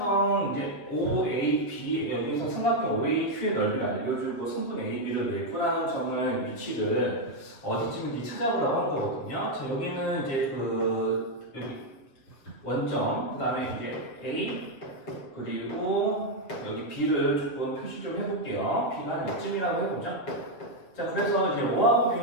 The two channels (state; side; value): late; right; 7.4 ms